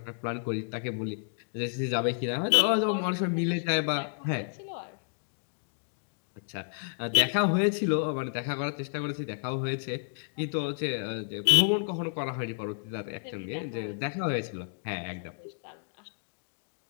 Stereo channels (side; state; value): right; silent; digital silence